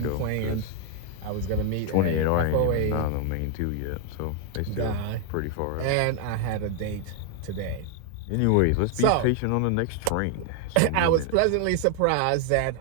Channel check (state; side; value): different; both; correlation 0.01